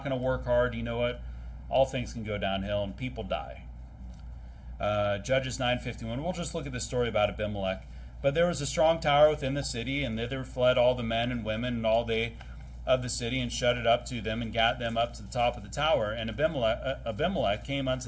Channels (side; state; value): both; identical; correlation 1.00